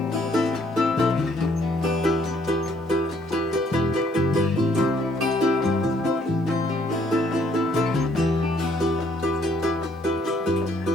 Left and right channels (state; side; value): normal; both; correlation 0.66